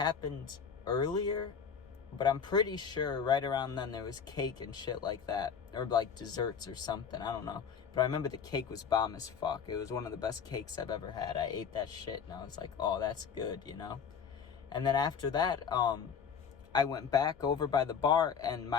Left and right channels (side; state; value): right; quieter; 6.8 dB